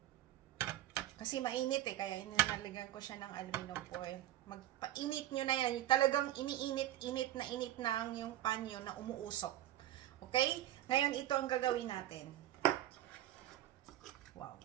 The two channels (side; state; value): left; quieter; 13.6 dB